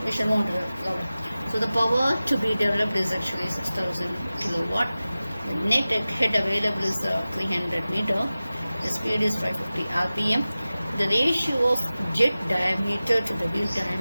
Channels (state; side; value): inverted; both; correlation -0.96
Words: we shall move on to the problem. So the power to be developed is actually 6000 kilowatt. The net head available is 300 meter. The speed is 550 rpm. The ratio of jet diameter to the wheel